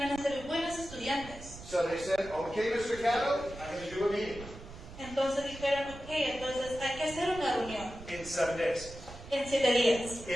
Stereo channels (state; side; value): noise; right; rumble, 15 dB below the sound